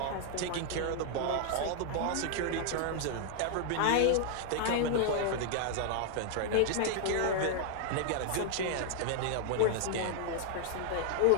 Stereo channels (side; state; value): both; different; correlation 0.00